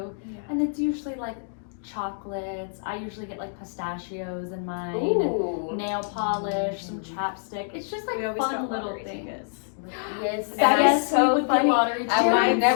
Yeah. And it's usually like chocolates. I usually get like pistachios in mine. Ooh. And nail polish, some chapstick. It's just like We always fun got little lottery things. tickets. Yes. That And is so we would funny. get lottery I Jeremiah might tickets.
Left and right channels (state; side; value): silent; right; digital silence